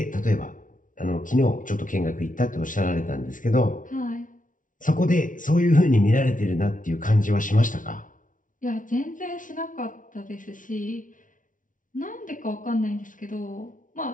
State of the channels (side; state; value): right; late; 0.38 ms